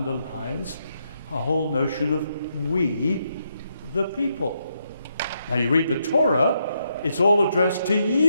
a whole notion of we, the people. Now, you read the Torah, it's all addressed to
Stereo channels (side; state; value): both; inverted; correlation -0.79